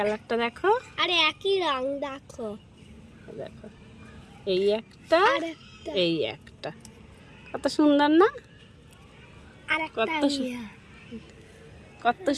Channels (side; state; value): both; identical; correlation 1.00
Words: দেখো, আরে একই রং দেখো, দেখো, এই একটা, আর একটা, এই একটা, কত সুন্দর না? আর একটা কত কত